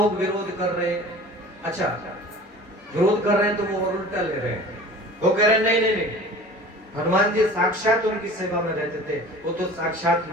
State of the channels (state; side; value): normal; both; correlation 0.42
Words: विरोध कर रहे हैं। अच्छा, विरोध कर रहे हैं तो वो और उल्टा ले रहे हैं। वो कह रहे हैं नहीं नहीं नहीं, हनुमान जी साक्षात उनकी सेवा में रहते थे, वो तो साक्षात